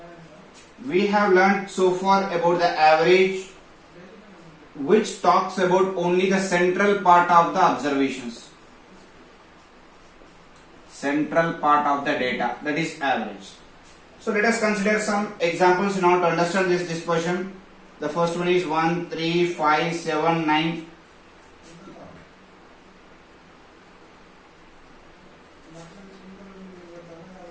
we have learned so far about the average, which talks about only the central part of the observations. Central part of the data, that is average. So let us consider some examples in order to understand this dispersion. The first one is 1, 3, 5, 7, 9.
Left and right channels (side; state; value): both; identical; correlation 1.00